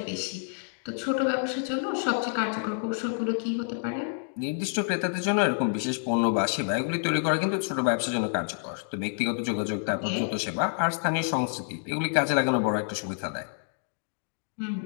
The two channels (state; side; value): silent; right; digital silence